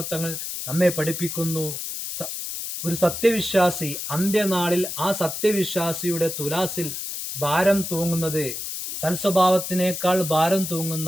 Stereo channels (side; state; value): left; noise; hiss, 6 dB below the sound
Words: തങ്ങൾ നമ്മെ പഠിപ്പിക്കുന്നു, ഒരു സത്യവിശ്വാസി അന്ത്യനാളിൽ ആ സത്യവിശ്വാസിയുടെ തുലാസിൽ ഭാരം തൂങ്ങുന്നത് സൽസ്വഭാവത്തിനേക്കാൾ ഭാരം